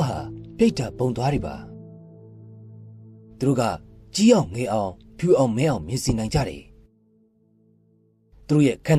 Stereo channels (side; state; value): both; identical; correlation 1.00